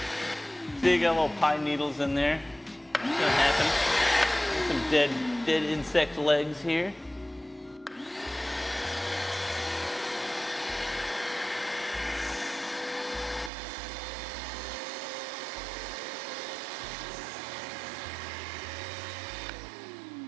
See, you got little pine needles in there. What's gonna happen? Some dead insect legs here.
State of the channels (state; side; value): drops out; left; at 13.5 s